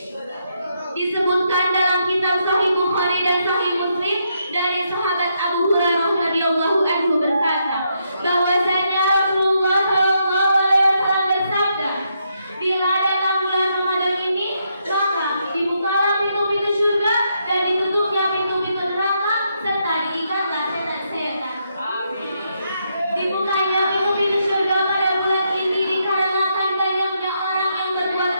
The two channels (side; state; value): both; inverted; correlation -0.78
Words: Disebutkan dalam kitab Sahih Bukhari dan Sahih Muslim dari sahabat Abu Hurairah radhiyallahu anhu berkata, bahwasanya Rasulullah sallallahu alaihi wasallam bersabda, bila datang bulan Ramadan ini, maka dibukalah pintu-pintu surga dan ditutupnya pintu-pintu neraka serta diikatlah setan-setan. Dibukanya pintu-pintu surga pada bulan ini dikarenakan banyaknya orang yang berbuat